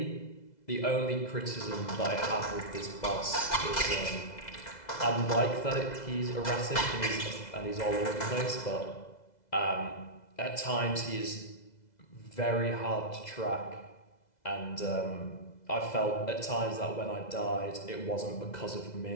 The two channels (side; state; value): right; late; 2.0 ms